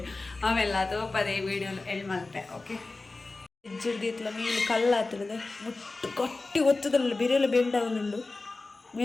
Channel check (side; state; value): right; quieter; 3.4 dB